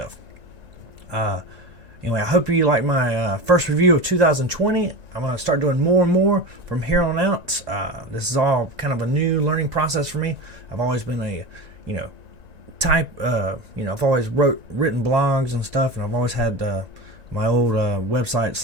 Anyway, I hope you like my first review of 2020. I'm going to start doing more and more from here on out. This is all kind of a new learning process for me. I've always been I've always written blogs and stuff, and I've always had my old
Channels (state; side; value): late; left; 1.9 ms